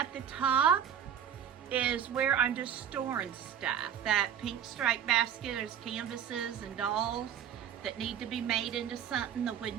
the top is where I'm just storing stuff. That pink stripe basket is canvases and dolls that need to be made into something. The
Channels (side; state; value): left; quieter; 8.9 dB